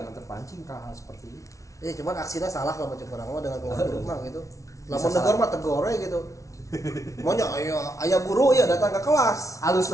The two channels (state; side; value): late; right; 0.15 ms